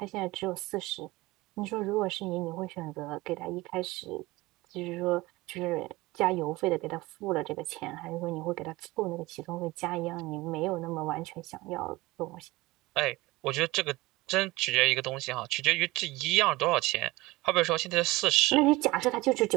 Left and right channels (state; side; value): quieter; left; 20.4 dB